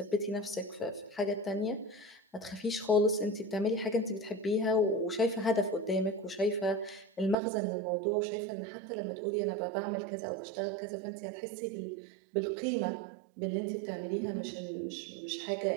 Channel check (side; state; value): left; drops out; at 7.4 s